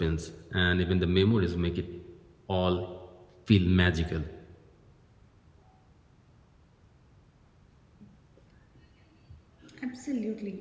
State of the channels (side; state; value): both; identical; correlation 1.00